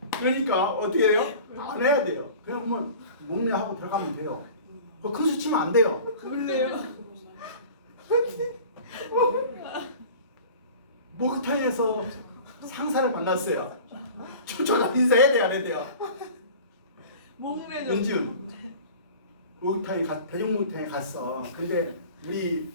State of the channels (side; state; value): both; inverted; correlation -0.41